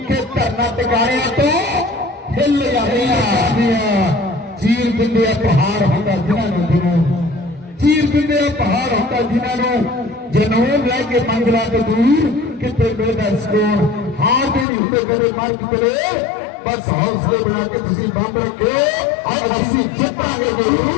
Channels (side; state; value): right; drops out; at 14.7 s